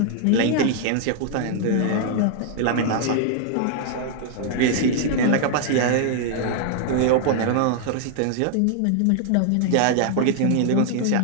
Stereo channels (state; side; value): different; both; correlation 0.00